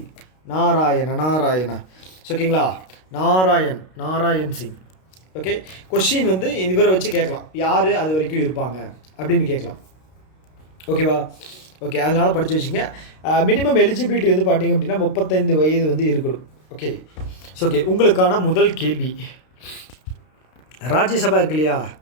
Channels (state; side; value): late; right; 32 ms